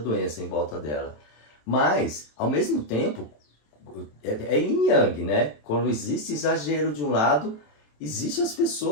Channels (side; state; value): right; late; 27 ms